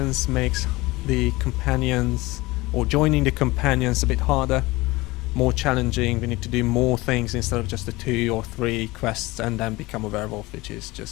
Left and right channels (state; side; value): quieter; right; 21.1 dB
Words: makes the companions, or joining the companions, a bit harder, more challenging. We need to do more things instead of just the 2 or 3 quests and then become a werewolf, which is